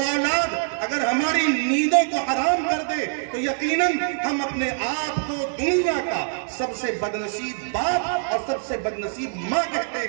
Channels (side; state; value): left; silent; 60 dB below the other